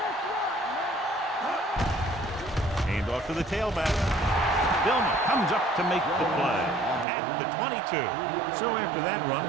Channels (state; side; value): drops out; left; at 7.1 s